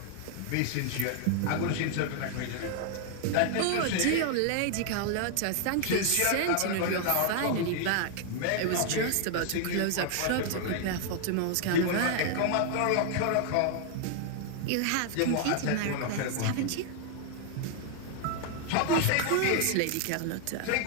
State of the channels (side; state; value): both; different; correlation 0.00